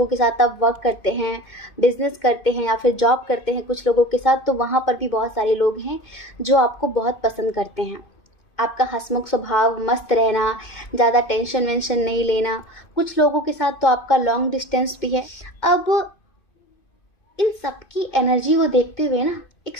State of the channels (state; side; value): late; right; 2.5 ms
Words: के साथ आप वर्क करते हैं, बिजनेस करते हैं या फिर जॉब करते हैं कुछ लोगों के साथ, तो वहाँ पर भी बहुत सारे लोग हैं जो आपको बहुत पसंद करते हैं। आपका हंसमुख स्वभाव, मस्त रहना, ज़्यादा टेंशन वेंशन नहीं लेना। कुछ लोगों के साथ तो आपका लॉन्ग डिस्टेंस भी है। अब इन सब की एनर्जी को देखते हुए ना एक